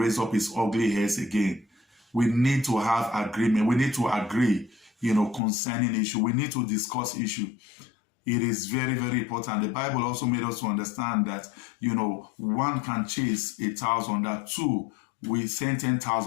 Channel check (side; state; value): right; drops out; at 5.4 s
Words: up his ugly hairs again. We need to have agreement. We need to agree, concerning issue. We need to discuss issue. It is very, very important. The Bible also made us to understand that, one can chase 1,000, that two, we send